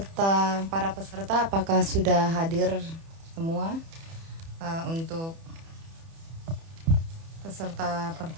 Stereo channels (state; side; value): late; left; 30 ms